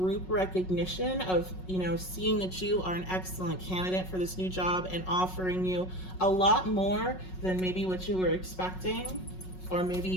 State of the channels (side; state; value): right; late; 5.4 ms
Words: recognition of, you know, seeing that you are an excellent candidate for this new job and offering you a lot more than maybe what you were expecting. Or maybe